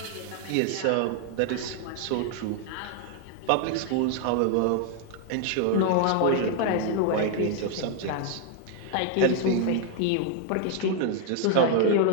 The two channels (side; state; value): both; different; correlation 0.00